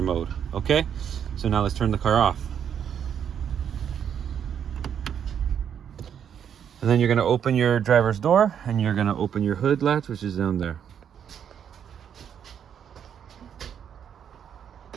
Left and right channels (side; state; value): left; quieter; 8.5 dB